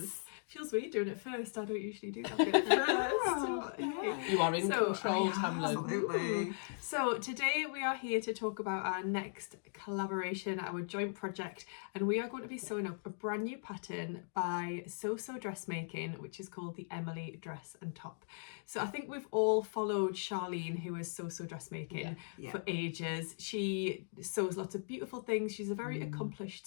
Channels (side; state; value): right; silent; digital silence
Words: Feels weird doing it first. I don't usually do that bit first. Yeah. You are in control, Tamlin. Absolutely. So today we are here to talk about our next collaboration, our joint project, and we are going to be sewing up a brand new pattern by Sew Dressmaking, which is called the Emily Dress and Top. So I think we've all followed Charlene, who is Sew Dressmaking, for ages. She sews lots of beautiful things. She's a very accomplished